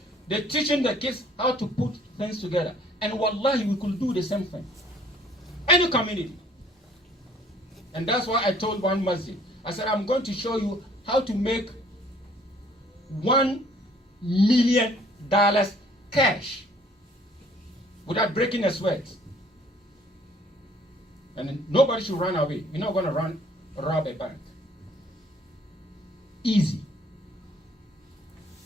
they're teaching the kids how to put things together. And wallahi, we could do the same thing. Any community. And that's why I told one masjid, I said, I'm going to show you how to make $1 million cash without breaking a sweat. And nobody should run away. You're not going to rob a bank. Easy.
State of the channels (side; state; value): both; normal; correlation 0.58